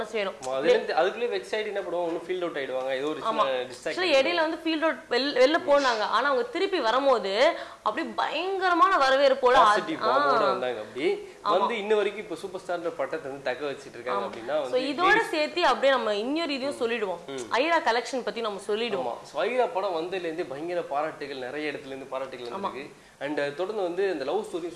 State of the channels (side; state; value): both; identical; correlation 1.00